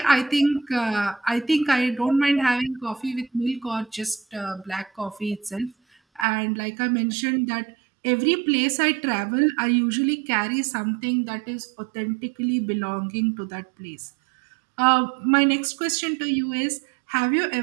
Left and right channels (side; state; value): left; drops out; at 6.2 s